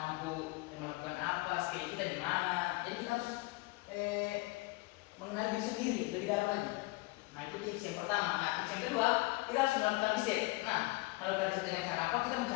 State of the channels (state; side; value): quieter; right; 23.3 dB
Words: melakukan apa? Skill kita di mana? Jadi kita harus mengenal diri sendiri lebih dalam lagi. Nah, itu tips yang pertama. Nah, tips yang kedua, kita harus melakukan riset. Nah, melakukan riset dengan cara apa? Kita